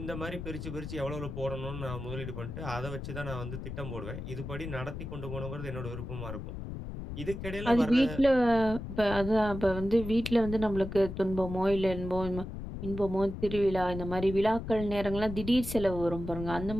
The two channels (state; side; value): noise; left; rumble, 8 dB below the sound